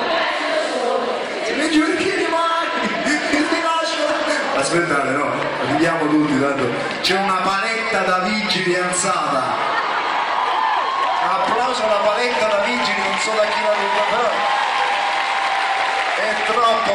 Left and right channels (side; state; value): both; identical; correlation 1.00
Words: Se mi giuri che rimani, che mi lascio. Aspettate, no, arriviamo tutti, tanto c'è una paletta da vigili alzata. Applauso alla paletta da vigili, non so da chi la ruba, però è troppo